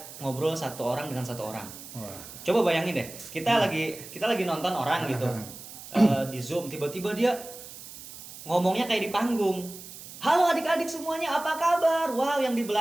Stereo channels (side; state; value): right; noise; hiss, 14 dB below the sound